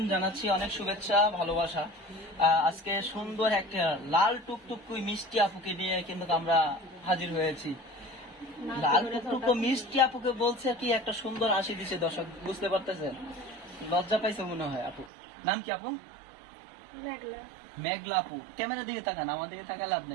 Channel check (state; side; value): drops out; left; at 15.1 s